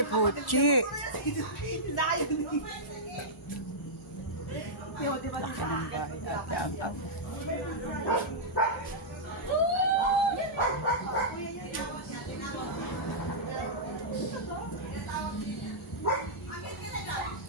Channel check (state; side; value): normal; both; correlation -0.11